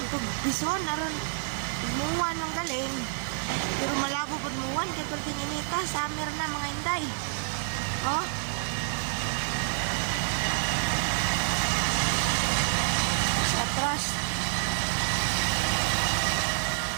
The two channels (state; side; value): silent; left; 59 dB below the other